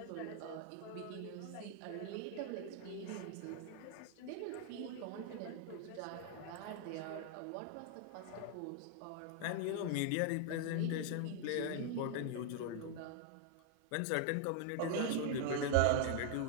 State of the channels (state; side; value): different; both; correlation 0.00